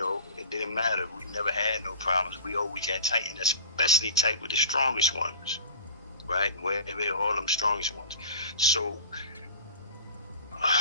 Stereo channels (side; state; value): both; inverted; correlation -0.37